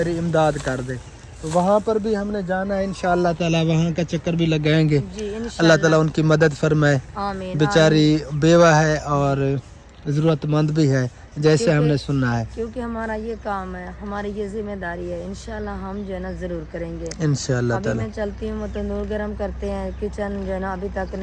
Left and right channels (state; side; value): identical; both; correlation 1.00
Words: इमदाद कर दे। तो वहाँ पर भी हमने जाना है इंशाअल्लाह ताला, वहाँ का चक्कर भी लगाएंगे। जी अल्लाह इंशाल्लाह। ताला उनकी मदद फरमाए। आमीन। बेचारी बेवा है और ज़रूरतमंद भी है, जैसे क्योंकि- हमने सुना है। क्योंकि हमारा ये काम है, हमारी ये जिम्मेदारी है, इंशाल्लाह हम जो है ना जरूर करेंगे। इंशाअल्लाह अभी ताला। मैं चलती हूँ, तंदूर गरम करते हैं। किचन जो है ना अभी तक